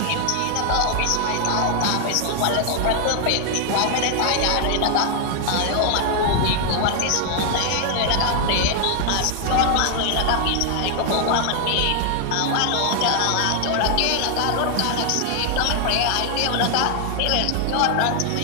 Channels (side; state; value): both; different; correlation 0.00